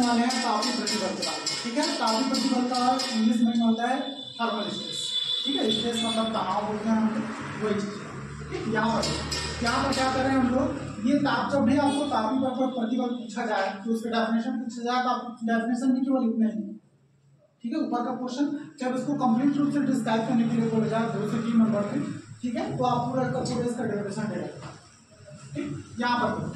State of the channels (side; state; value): both; identical; correlation 1.00